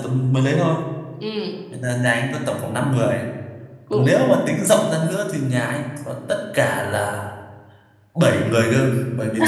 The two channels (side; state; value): both; identical; correlation 1.00